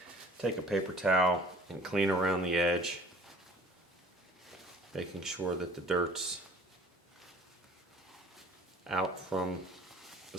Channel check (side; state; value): both; normal; correlation 0.51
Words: take a paper towel and clean around the edge, making sure that the dirt's out from the